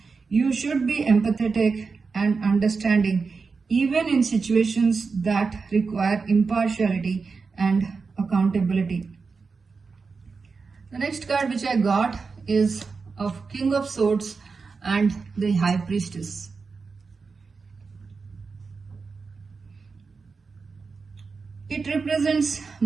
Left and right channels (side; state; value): left; quieter; 4.7 dB